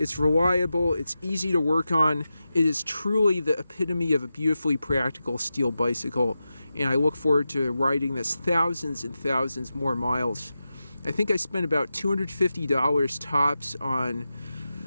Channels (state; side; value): inverted; both; correlation -0.91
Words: reliable, it's easy to work on. It is truly the epitome of a beautifully practical steel bicycle, and I look forward to riding this thousands and thousands more miles. I think I spent about $250 tops on